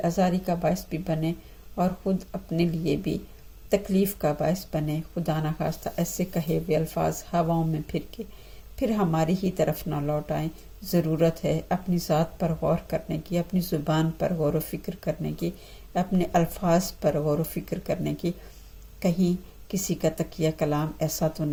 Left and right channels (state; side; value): identical; both; correlation 1.00